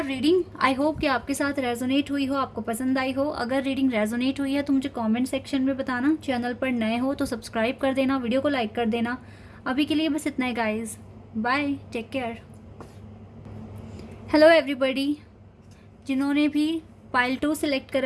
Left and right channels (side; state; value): both; identical; correlation 1.00